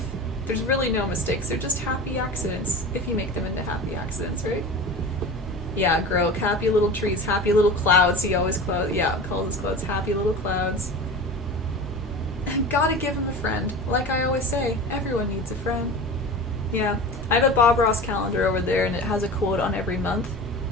There's really no mistakes. They're just happy accidents, if you make them into happy accidents, right? Yeah, Grok, happy little trees, happy little clouds. He always calls his clouds happy little clouds. Gotta give him a friend. Like I always say, everyone needs a friend. Yeah, I have a Bob Ross calendar over there, and it has a quote on every month.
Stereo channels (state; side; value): normal; both; correlation 0.33